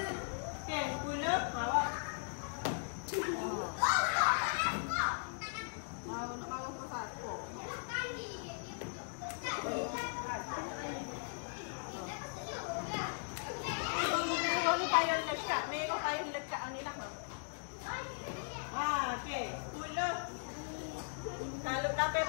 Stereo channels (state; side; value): silent; right; digital silence